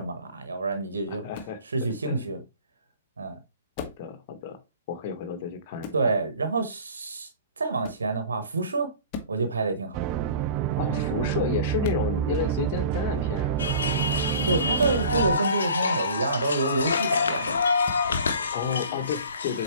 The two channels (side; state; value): both; inverted; correlation -0.45